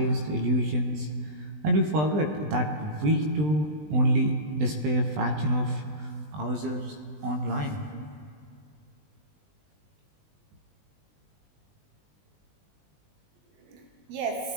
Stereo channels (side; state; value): left; late; 20 ms